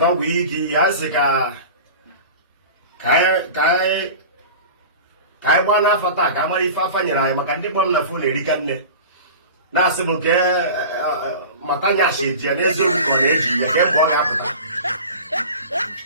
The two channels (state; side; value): inverted; both; correlation -0.35